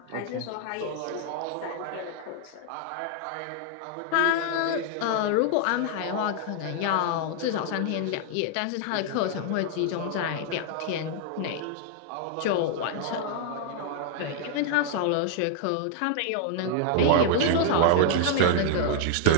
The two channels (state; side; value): different; both; correlation 0.00